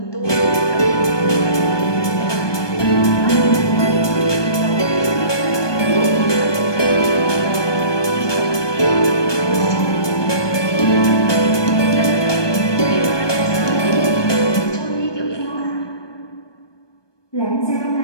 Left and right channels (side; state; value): right; late; 1.2 ms